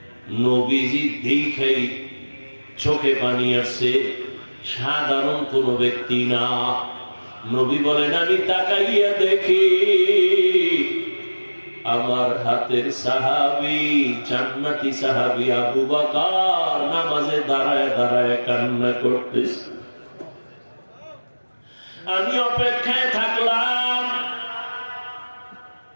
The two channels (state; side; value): inverted; both; correlation -1.00